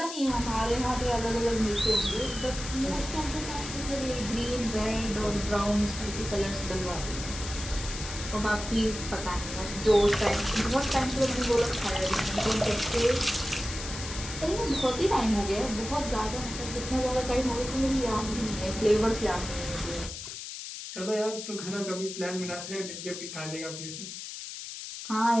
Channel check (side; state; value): left; noise; hiss, 9 dB below the sound